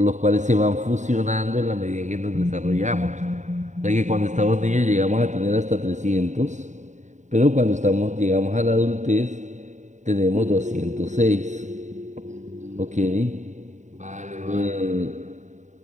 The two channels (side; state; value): left; late; 0.35 ms